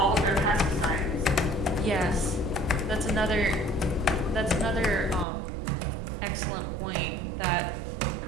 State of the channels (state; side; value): drops out; left; at 5.2 s